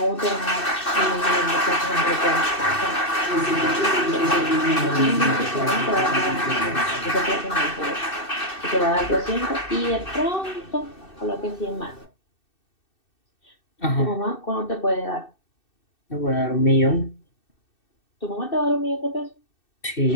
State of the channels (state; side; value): late; right; 2.6 ms